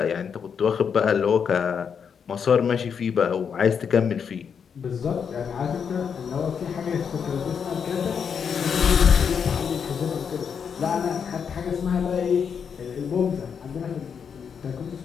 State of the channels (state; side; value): quieter; right; 6.9 dB